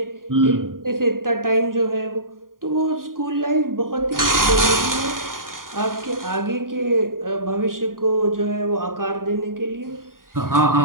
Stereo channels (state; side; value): late; left; 0.91 ms